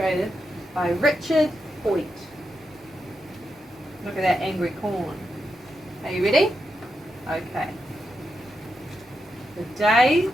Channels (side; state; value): both; normal; correlation 0.86